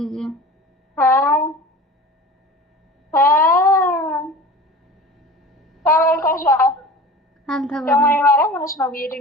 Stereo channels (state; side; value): normal; both; correlation 0.37